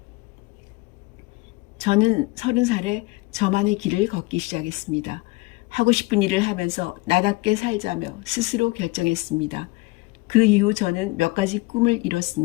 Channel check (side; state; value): right; quieter; 23.5 dB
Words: 저는 30살에 저만의 길을 걷기 시작했습니다. 하고 싶은 일을 하면서 나답게 살자며 스스로 결정했습니다. 그 이후 저는 몇 가지 꿈을